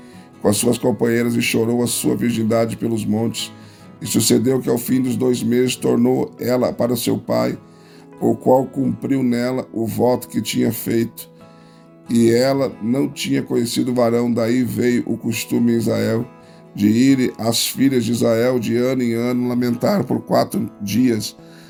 com as suas companheiras e chorou a sua virgindade pelos montes. E sucedeu que ao fim dos 2 meses tornou ela para seu pai, o qual cumpriu nela o voto que tinha feito. E ela não tinha conhecido varão. Daí veio o costume em Israel de ir as filhas de Israel de ano em ano lamentar por 4 dias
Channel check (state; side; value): identical; both; correlation 1.00